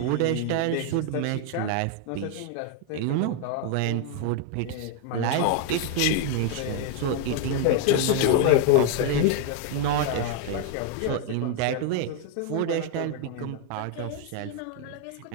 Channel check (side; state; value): both; different; correlation 0.00